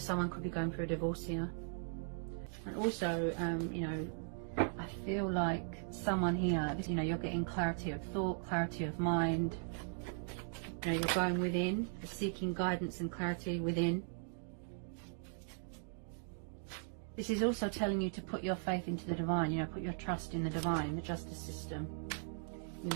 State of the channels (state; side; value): silent; left; digital silence